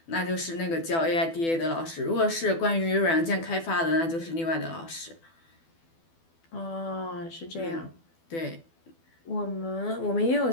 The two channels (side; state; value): right; late; 12 ms